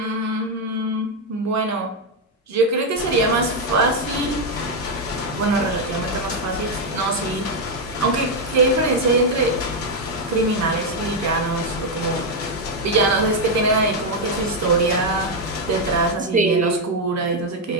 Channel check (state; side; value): normal; both; correlation 0.02